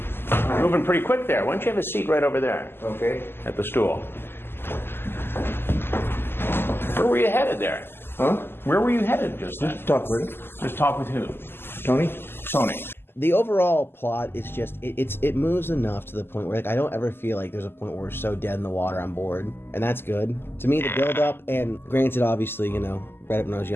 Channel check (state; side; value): late; right; 0.11 ms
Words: Moving pretty quick there. Why don't you have a seat right over there? Okay. At the stool. Where were you headed there? Huh? Where were you headed just then? Just talk with him. Just talk with who? Tony? Tony. The overall plot is just, it moves enough to the point where, like, I don't ever feel like there's a point where we're so dead in the water I'm bored, and that's good. To me, the build-up, and granted, obviously, read it when I was